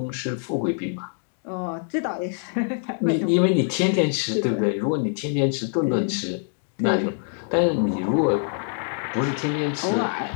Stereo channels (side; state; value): right; silent; 62 dB below the other